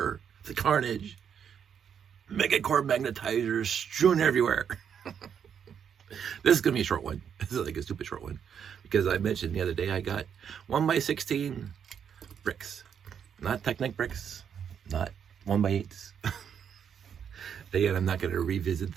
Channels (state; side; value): quieter; left; 7.9 dB